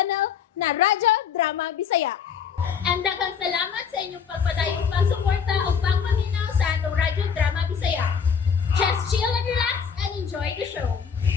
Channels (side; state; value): right; quieter; 6.9 dB